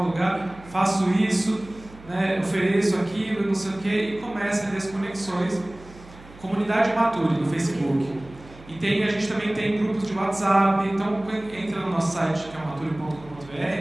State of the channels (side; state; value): right; noise; hum, 21 dB below the sound